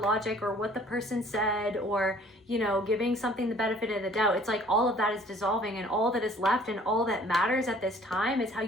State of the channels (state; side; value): normal; both; correlation 0.54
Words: logic or what the person said, or you know, giving something the benefit of the doubt. It's like all of that is dissolving, and all that is left and all that matters at this time is how